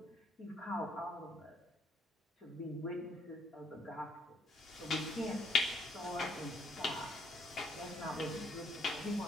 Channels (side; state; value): both; normal; correlation 0.69